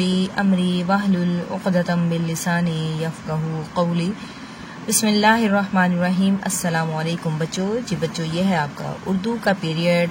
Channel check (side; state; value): both; identical; correlation 1.00